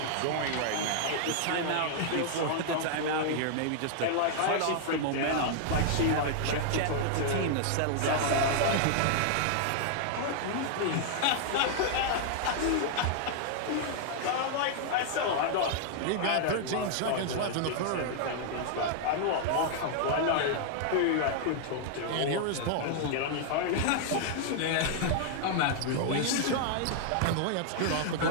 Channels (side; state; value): both; different; correlation -0.01